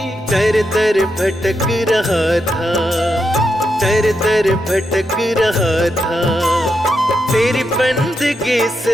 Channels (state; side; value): normal; both; correlation 0.84